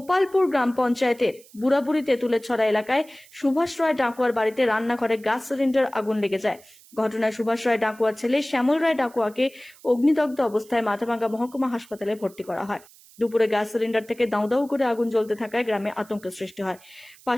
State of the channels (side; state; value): right; noise; hiss, 25 dB below the sound